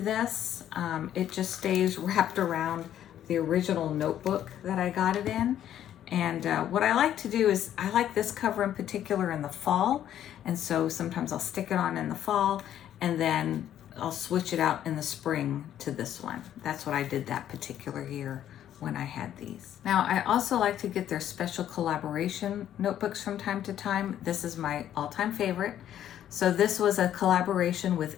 It just stays wrapped around the original notebook that I got it in. And what I like to do is I like this cover in particular in the fall. And so sometimes I'll stick it on in the fall and then I'll switch it out in the spring to this one. That's what I did that particular year when I had these. Now, I also like to get their special collaboration notebooks from time to time. This is my all-time favorite. So this was a collaboration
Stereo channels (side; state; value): right; quieter; 11.0 dB